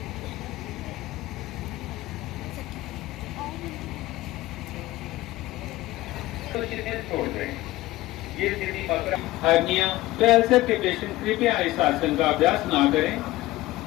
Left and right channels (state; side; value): quieter; right; 17.5 dB